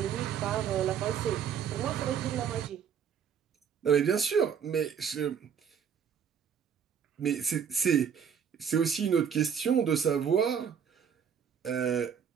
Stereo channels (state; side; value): quieter; left; 7.7 dB